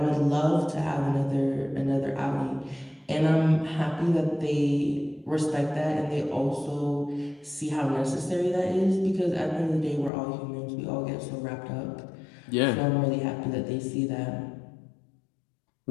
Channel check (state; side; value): drops out; right; at 10.1 s